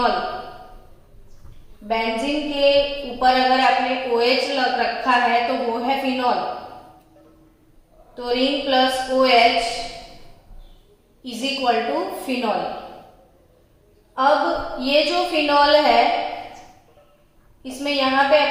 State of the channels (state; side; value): identical; both; correlation 1.00